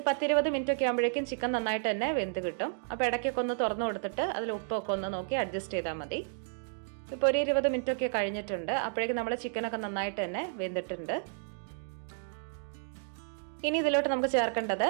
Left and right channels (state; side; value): silent; left; digital silence